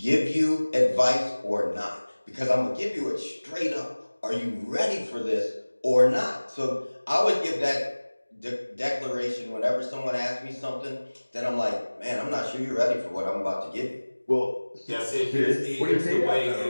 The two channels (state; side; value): inverted; both; correlation -1.00